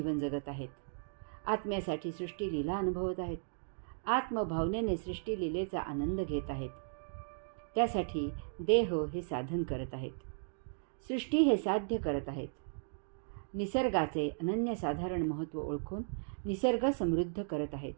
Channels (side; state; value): left; silent; digital silence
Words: जगत आहेत. आत्म्यासाठी सृष्टी लीला अनुभवत आहेत. आत्मभावनेने सृष्टी लीलेचा आनंद घेत आहेत. त्यासाठी देह हे साधन करत आहेत. सृष्टी हे साध्य करत आहेत. निसर्गाचे अनन्यसाधारण महत्त्व ओळखून निसर्ग समृद्ध करत आहेत.